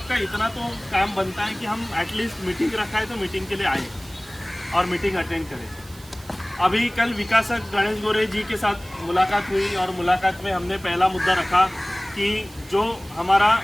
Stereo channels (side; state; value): right; noise; hiss, 22 dB below the sound